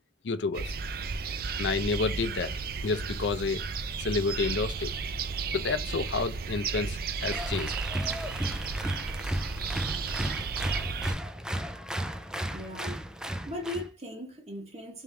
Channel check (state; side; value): normal; both; correlation 0.42